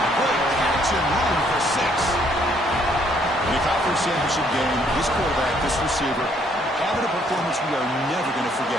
Great catch and run for 6. In the conference championship game, this quarterback, this receiver, having a performance we are never going to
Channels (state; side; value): normal; both; correlation 0.67